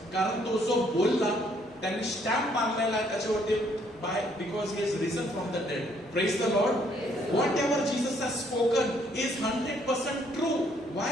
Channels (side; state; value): both; normal; correlation 0.67